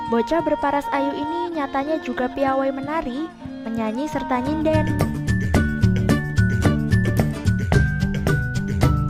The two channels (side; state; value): both; identical; correlation 1.00